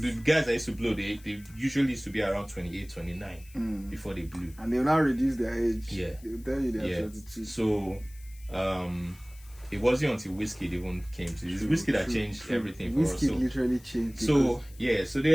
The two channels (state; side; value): noise; left; hiss, 24 dB below the sound